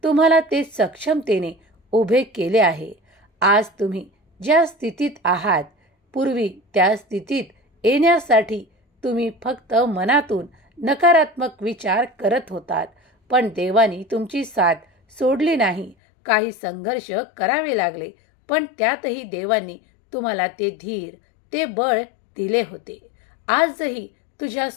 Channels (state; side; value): drops out; right; at 16.0 s